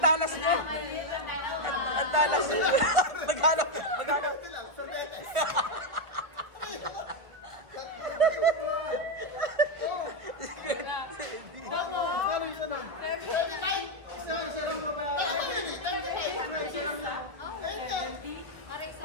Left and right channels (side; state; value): left; late; 1.9 ms